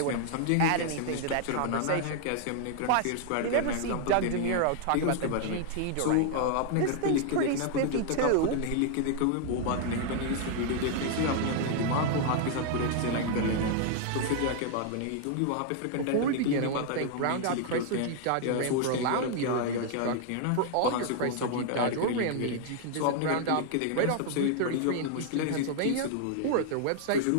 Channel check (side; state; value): both; different; correlation 0.00